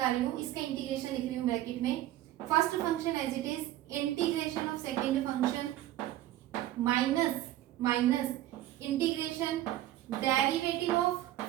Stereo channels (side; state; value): left; quieter; 14.1 dB